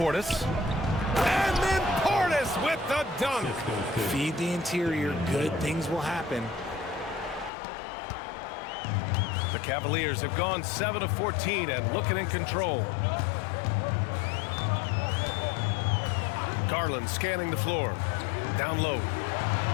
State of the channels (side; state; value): right; drops out; at 7.5 s